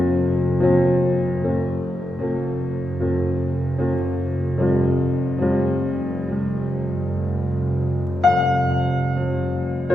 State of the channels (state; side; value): normal; both; correlation 0.86